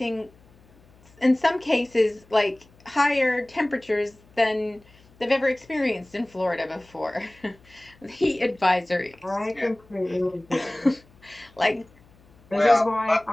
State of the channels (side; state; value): left; noise; hum, 28 dB below the sound